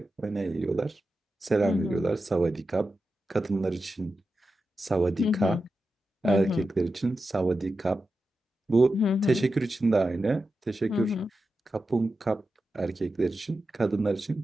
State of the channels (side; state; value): both; normal; correlation 0.91